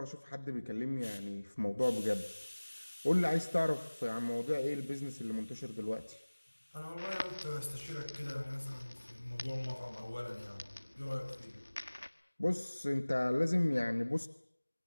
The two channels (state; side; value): inverted; both; correlation -1.00